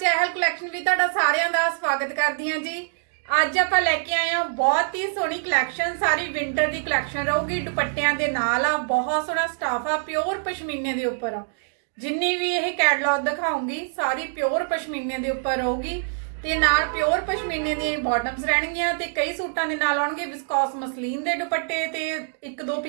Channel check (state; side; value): silent; left; digital silence